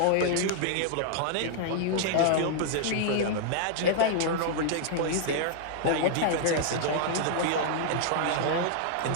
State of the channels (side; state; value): both; different; correlation -0.01